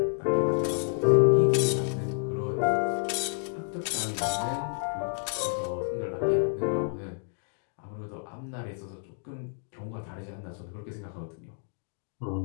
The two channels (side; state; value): right; silent; digital silence